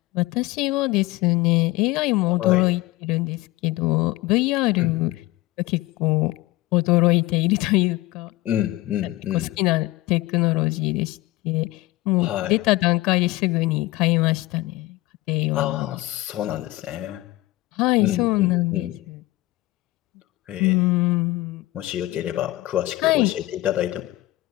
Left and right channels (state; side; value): quieter; right; 18.5 dB